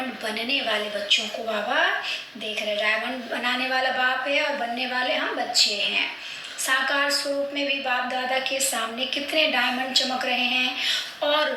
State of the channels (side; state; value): both; identical; correlation 1.00